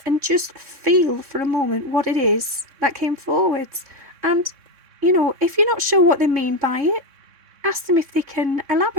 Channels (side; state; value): left; late; 3.6 ms